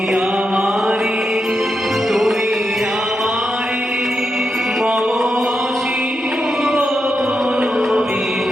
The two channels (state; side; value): normal; both; correlation 0.85